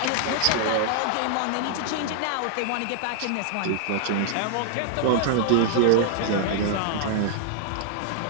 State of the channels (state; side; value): different; both; correlation -0.01